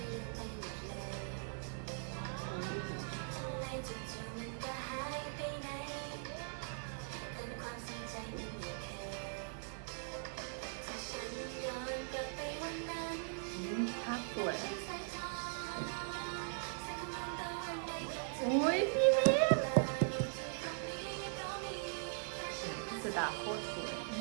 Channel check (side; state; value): left; silent; 51 dB below the other